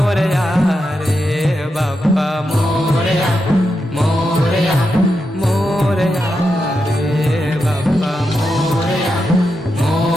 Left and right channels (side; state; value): both; normal; correlation 0.86